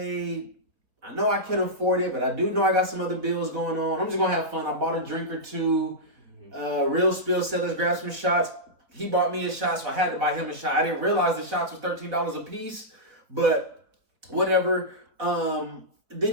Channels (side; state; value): left; late; 4.0 ms